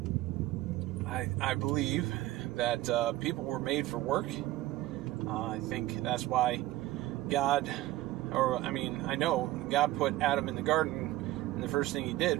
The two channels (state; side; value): quieter; left; 16.2 dB